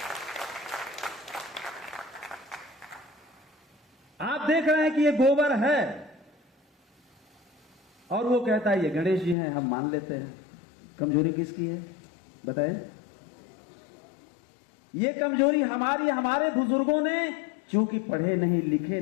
आप देख रहे हैं कि ये गोबर है और वो कहता है ये गणेश जी हैं, हम मान लेते हैं। कमजोरी किसकी है बताएं? ये कमजोरी हमारी, हमारे बुजुर्गों ने, चूंकि पढ़े नहीं, लिखे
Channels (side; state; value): right; drops out; at 9.3 s